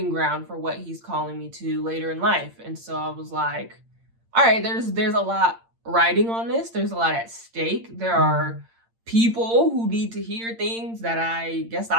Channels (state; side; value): late; left; 8.8 ms